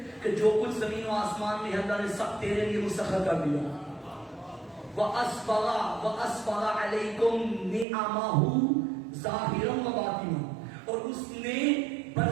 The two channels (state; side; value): drops out; left; at 7.9 s